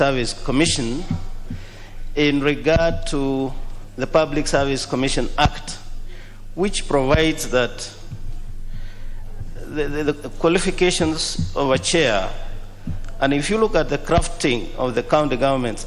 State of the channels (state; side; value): identical; both; correlation 1.00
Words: Commission in regard to the Public Service Commission Act, which provides that the qualifications of a chair, and if you look at the crafting of the County